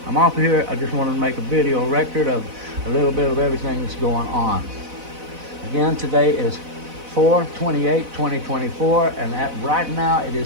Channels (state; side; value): late; left; 4.0 ms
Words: I'm off here. I just wanted to make a video record of a little bit of everything that's going on. Again, today is 4/28/2024, and right now it